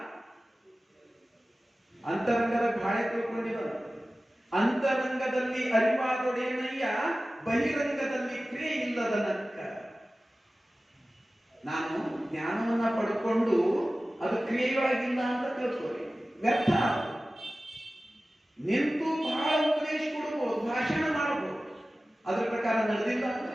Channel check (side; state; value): both; normal; correlation 0.96